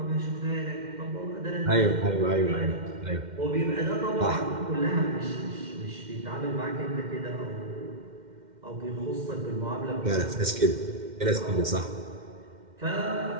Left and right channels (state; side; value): late; left; 2.1 ms